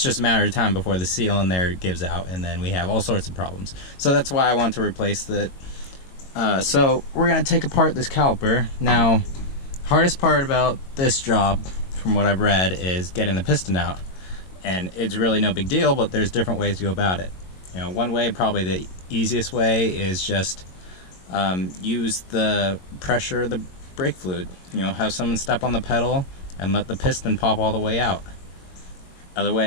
just a matter of time before the seal in there gives out, and then we have all sorts of problems. So that's why I want to replace it. So we're going to take apart this caliper. Now, hardest part about this job, from what I've read, is getting the piston out. And it's really no big deal, but there's different ways to go about it. You know, one way, probably the easiest way, is just use the pressure of the brake fluid. You know, have someone step on the pedal and let the piston pop all the way out. Other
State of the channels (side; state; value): right; late; 22 ms